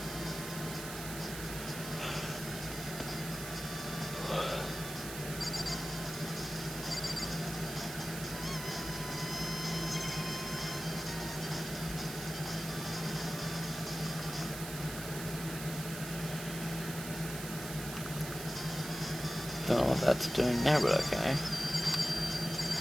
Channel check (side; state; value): right; noise; hiss, 8 dB below the sound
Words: Don't know what that's doing there, but okay.